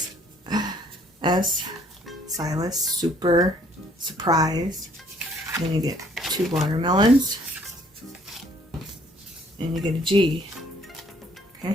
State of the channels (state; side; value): normal; both; correlation 0.62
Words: S. Silas, super, surprise. Then you get 2 watermelons. And you get a G. Okay.